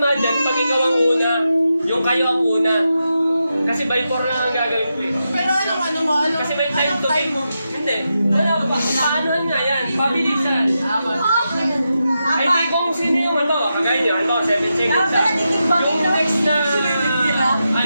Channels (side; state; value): both; inverted; correlation -0.88